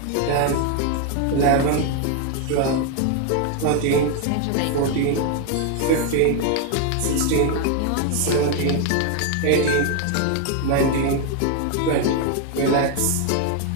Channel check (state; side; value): different; both; correlation 0.01